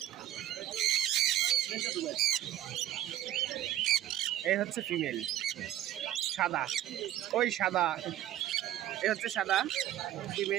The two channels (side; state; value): left; quieter; 12.8 dB